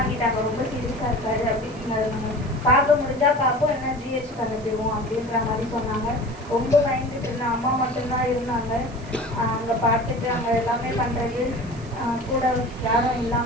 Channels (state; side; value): noise; right; hiss, 24 dB below the sound